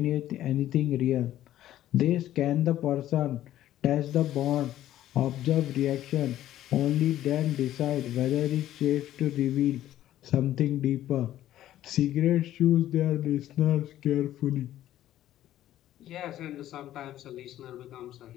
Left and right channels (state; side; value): quieter; right; 13.0 dB